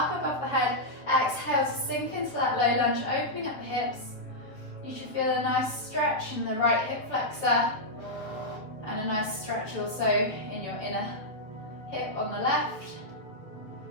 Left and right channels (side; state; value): right; late; 7.0 ms